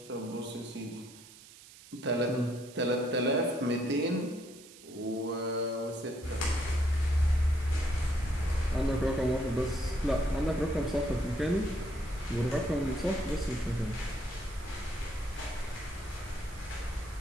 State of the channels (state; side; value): noise; right; hiss, 20 dB below the sound